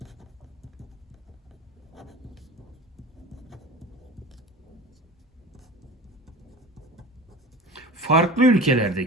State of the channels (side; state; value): both; normal; correlation 0.35